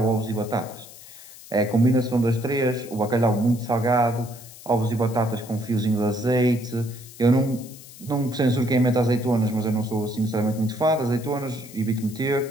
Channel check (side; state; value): left; noise; hiss, 18 dB below the sound